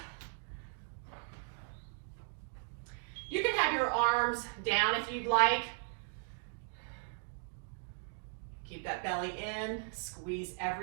You can have your arms down if you'd like. Keep that belly in, squeeze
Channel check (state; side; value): silent; left; 53 dB below the other